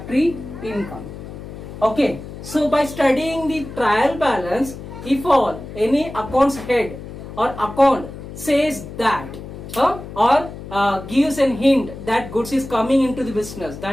income. Okay, so by studying the trial balance, if all any accounts head or account says that or gives a hint that goods is coming into the business,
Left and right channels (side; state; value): left; noise; hum, 12 dB below the sound